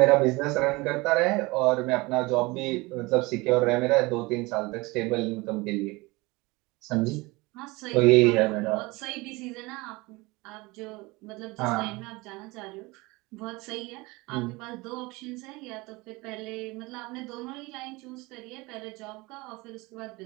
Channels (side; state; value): left; quieter; 23.6 dB